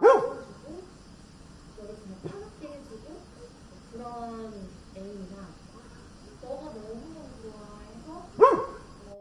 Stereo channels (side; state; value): both; identical; correlation 1.00